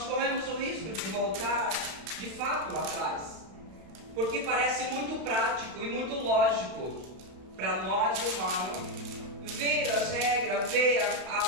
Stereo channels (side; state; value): left; late; 32 ms